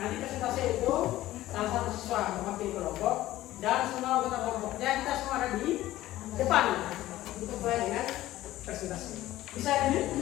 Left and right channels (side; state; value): right; quieter; 15.3 dB